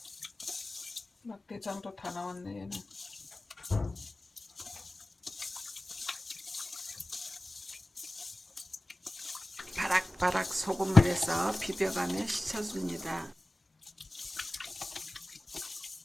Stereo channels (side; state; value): both; normal; correlation 0.97